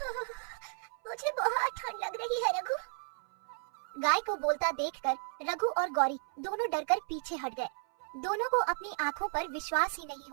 मुझे बहुत ठंड लग रही है रघु। गाय को बोलता देखकर रघु और गौरी दोनों डरकर पीछे हट गए। दोनों को अपनी आंखों पर विश्वास ही नहीं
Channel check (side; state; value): left; silent; 55 dB below the other